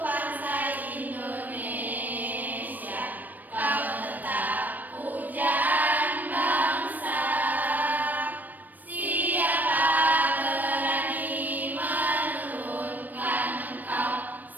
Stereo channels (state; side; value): late; left; 0.086 ms